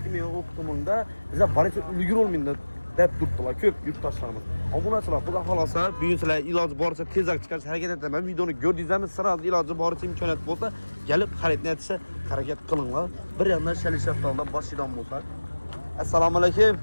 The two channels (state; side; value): inverted; both; correlation -1.00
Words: meva Optumda bizlar barcha ulgurolmaydi deb turibdilar ko'p yurtdoshlarimiz. Obunachilar, xudo xolosa bugun sizlar iloji boricha tezroq chiqarishga harakat etaman. Videoni ko'rdingizmi? Siz iloji boricha imkoniyat bo'lsa, kelib xaridni etishga harakat qilinglar. Bir yandan shalil, shaftolidan boshlaydigan bo'lsak. Assalomu alaykum.